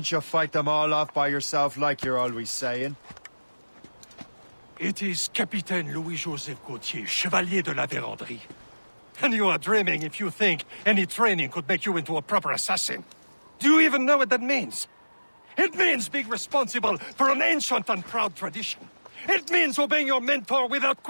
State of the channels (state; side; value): inverted; both; correlation -1.00